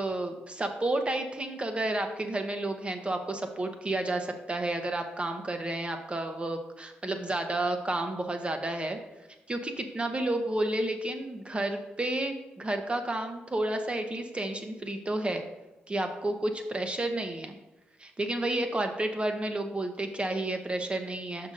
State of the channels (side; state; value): both; normal; correlation 0.84